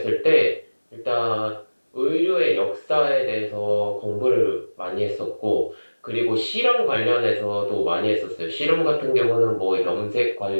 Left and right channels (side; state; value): both; inverted; correlation -1.00